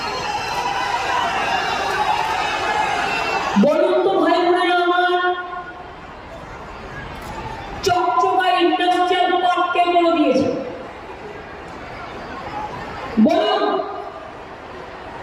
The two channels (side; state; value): both; identical; correlation 1.00